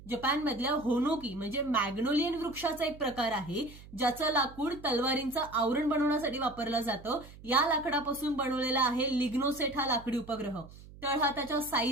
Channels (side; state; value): right; noise; hum, 19 dB below the sound